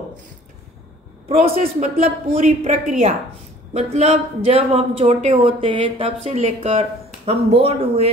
Process मतलब पूरी प्रक्रिया, मतलब जब हम छोटे होते हैं तब से लेकर हम बोर्न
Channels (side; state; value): both; normal; correlation 0.52